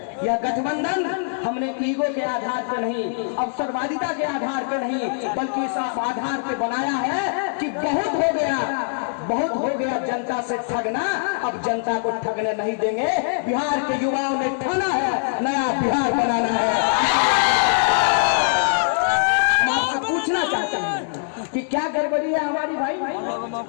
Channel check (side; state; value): right; silent; digital silence